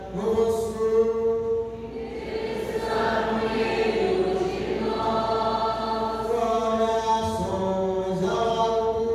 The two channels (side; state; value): both; identical; correlation 1.00